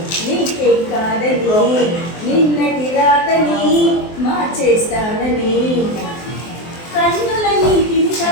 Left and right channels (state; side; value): late; right; 23 ms